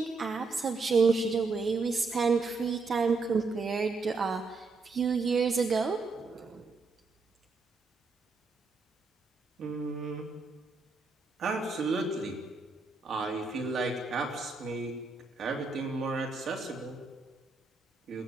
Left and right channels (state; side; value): quieter; left; 4.1 dB